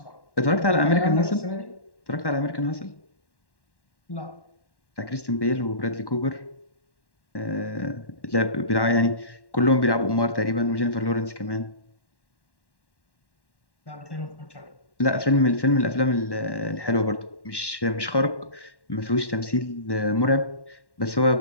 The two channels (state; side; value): late; right; 1.1 ms